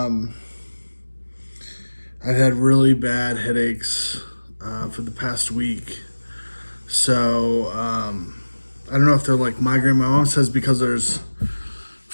had really bad headaches for the past week. So I don't know if they're like migraine. My mom says because there's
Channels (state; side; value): inverted; both; correlation -1.00